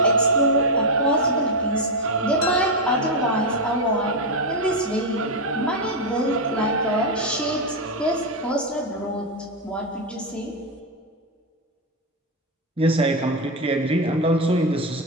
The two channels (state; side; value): normal; both; correlation 0.05